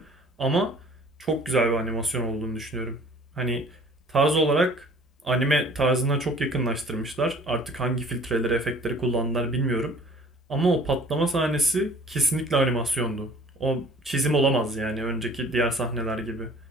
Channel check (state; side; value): normal; both; correlation 0.51